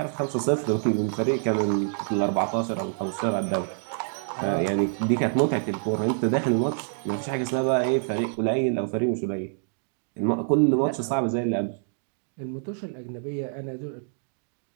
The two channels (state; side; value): silent; left; digital silence